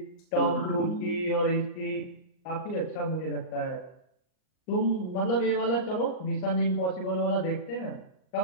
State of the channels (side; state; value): right; late; 39 ms